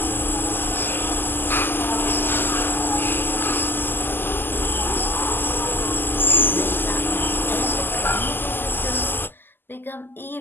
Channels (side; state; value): right; late; 0.095 ms